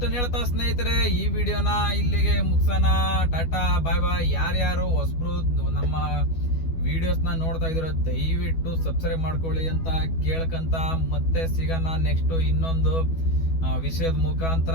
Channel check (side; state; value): right; late; 12 ms